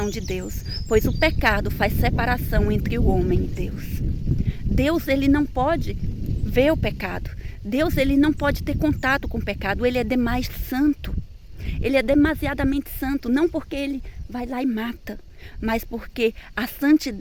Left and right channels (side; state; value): both; identical; correlation 1.00